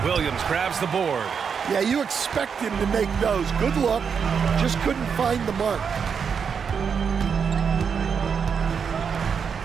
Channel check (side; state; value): left; quieter; 6.5 dB